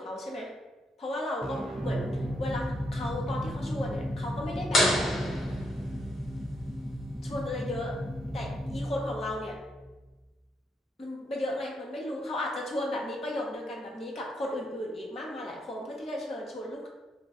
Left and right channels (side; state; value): both; normal; correlation 0.78